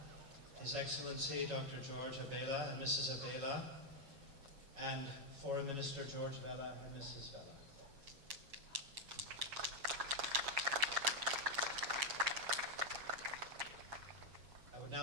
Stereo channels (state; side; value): late; left; 7.3 ms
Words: His Excellency Dr. George Abela and Mrs. Abela, and Foreign Minister George Vella and Mrs. Vella. I would